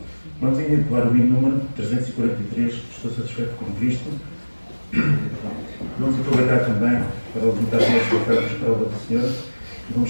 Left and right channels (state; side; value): inverted; both; correlation -1.00